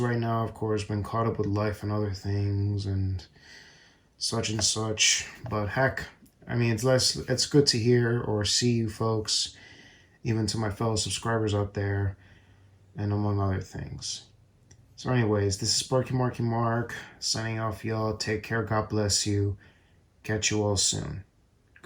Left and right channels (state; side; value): identical; both; correlation 1.00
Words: now, of course, been caught up with life and other things and such and such. But heck, I mean, it's good to hear or see you folks, even to my fellow subscribers out there, and among other things. So anyways, this is Sparky Marky Mark, signing off, y'all. Take care, God bless you. Catch you all soon.